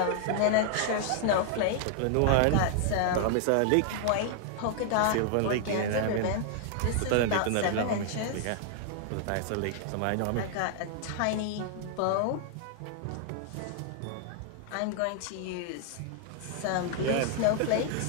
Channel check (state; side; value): different; both; correlation 0.00